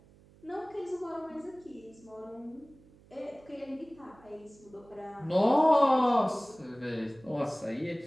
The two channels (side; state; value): right; noise; hum, 26 dB below the sound